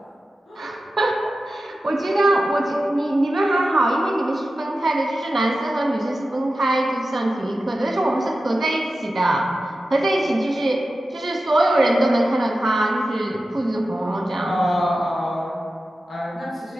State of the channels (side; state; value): both; normal; correlation 0.93